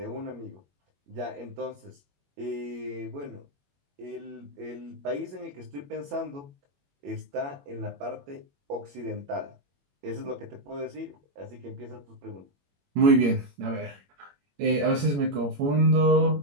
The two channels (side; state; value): left; late; 21 ms